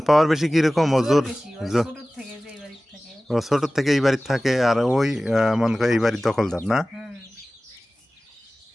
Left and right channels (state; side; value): normal; both; correlation 0.97